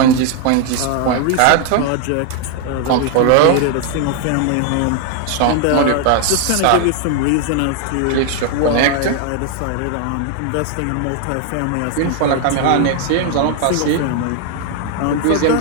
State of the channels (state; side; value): different; both; correlation 0.00